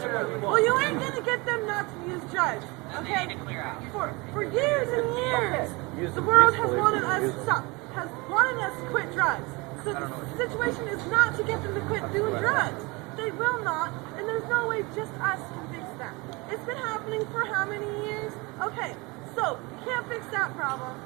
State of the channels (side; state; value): left; quieter; 25.8 dB